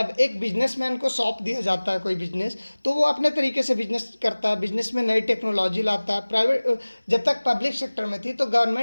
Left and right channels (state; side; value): inverted; both; correlation -1.00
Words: एक बिजनेसमैन को सौंप दिया जाता है कोई बिजनेस, तो वो अपने तरीके से बिजनेस करता है, बिजनेस में नई टेक्नोलॉजी लाता है। प्राइवेट जब तक पब्लिक सेक्टर में थी तो